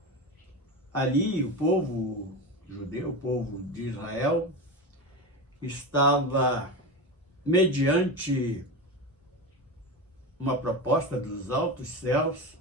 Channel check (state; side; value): normal; both; correlation 0.22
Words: Ali o povo judeu, o povo de Israel, estava mediante uma proposta dos altos céus